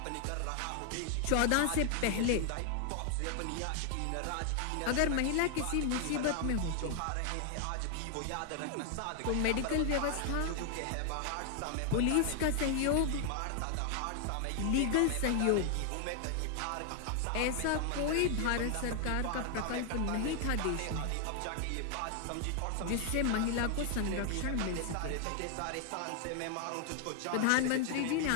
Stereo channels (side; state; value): both; different; correlation 0.00